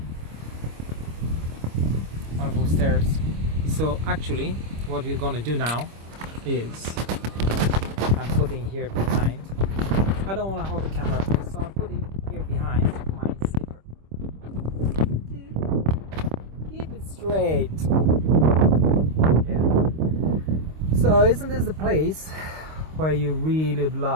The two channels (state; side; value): late; left; 26 ms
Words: wonderful stairs. So actually what we're gonna do now is I'm putting here behind, I don't want to hold the camera, so I'm putting here behind my slipper. Keep it straight. Yeah. So isn't this the place where you really would